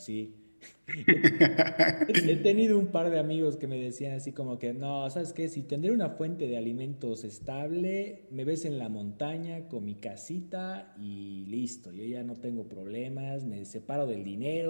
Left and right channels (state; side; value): inverted; both; correlation -1.00